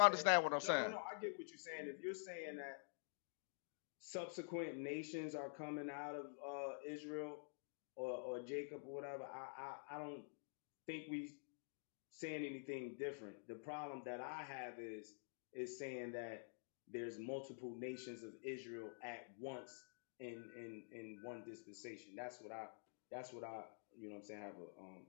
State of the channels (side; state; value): right; silent; digital silence